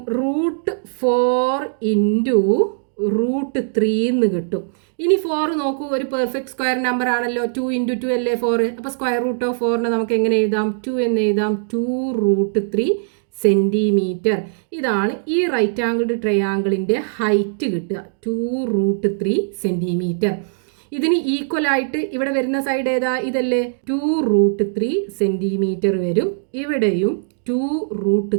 റൂട്ട് 4 ഇൻറ്റു റൂട്ട് 3 എന്ന് കിട്ടും. ഇനി 4 നോക്കൂ, ഒരു പെർഫെക്റ്റ് സ്ക്വയർ നമ്പർ ആണല്ലോ. 2 × 2 അല്ലേ 4. അപ്പോൾ √4 നമുക്ക് എങ്ങനെ എഴുതാം? 2 എന്ന് എഴുതാം. 2√3 സെൻറ്റിമീറ്റർ. ഇതാണ് ഈ റൈറ്റ് ആംഗിൾഡ് ട്രയാങ്കിളിൻ്റെ ഹൈറ്റ് കിട്ടുക, 2√3 സെൻറ്റിമീറ്റർ. ഇതിന് ഈക്വൽ ആയിട്ട് ഇവിടെ വരുന്ന സൈഡ് ഏതാ? ഇതല്ലേ, 2√3 സെൻറ്റിമീറ്റർ വരും. ഇവിടെയും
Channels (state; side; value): silent; left; digital silence